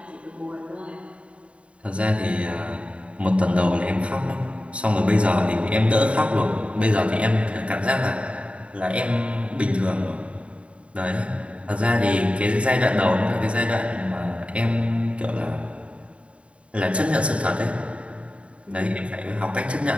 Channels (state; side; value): late; left; 0.062 ms